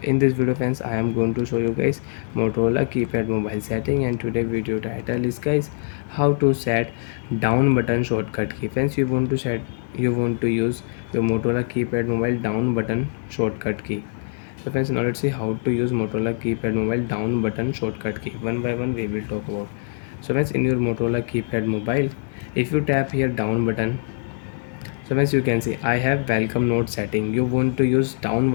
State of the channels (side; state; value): right; silent; digital silence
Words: In this video friends, I am going to show you guys Motorola keypad mobile setting, and today video title is guys how to set down button shortcut key. Friends, you want to use your Motorola keypad mobile down button shortcut key. So friends, now let's see how to use Motorola keypad mobile down button shortcut key. One by one we will talk about. So friends, in your Motorola keypad mobile, if you tap here down button, so as you can see, I have welcome note setting. You want to use down